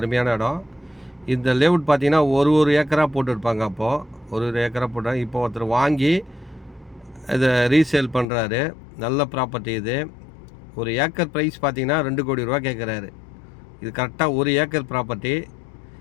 இடம். இந்த லேஅவுட் பார்த்தீங்கன்னா ஒரு ஏக்கராக போட்டுருப்பாங்க. அப்போது ஒரு ஏக்கராக போட்டாங்க. இப்போ ஒருத்தர் வாங்கி இதை ரீசேல் பண்ணுறாரு. நல்ல ப்ராப்பர்ட்டி இது. ஒரு ஏக்கர் ப்ரைஸ் பார்த்தீங்கன்னா 2 கோடி ரூபா கேட்குறாரு. இது கரெக்டாக 1 ஏக்கர் ப்ராப்பர்ட்டி.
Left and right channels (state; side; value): drops out; right; at 8.2 s